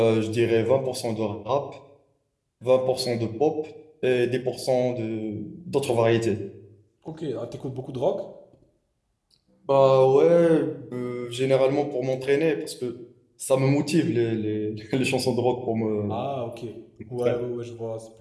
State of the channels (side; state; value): both; identical; correlation 1.00